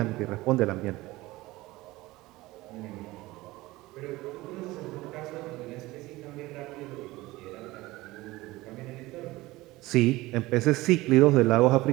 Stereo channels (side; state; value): left; quieter; 19.3 dB